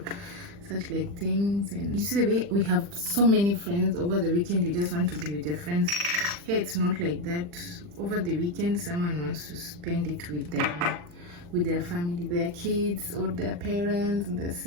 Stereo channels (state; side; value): late; left; 40 ms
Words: such like things. And you see the way we have so many friends over the weekend, you just want to be with your friends. Here it's not like that. Over the weekend, someone wants to spend it with them, with their family, their kids or their parents and their